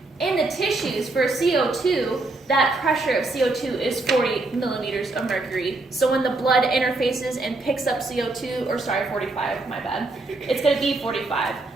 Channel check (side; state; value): left; quieter; 3.1 dB